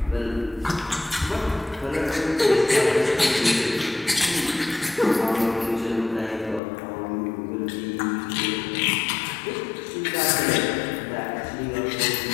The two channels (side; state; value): right; drops out; at 6.6 s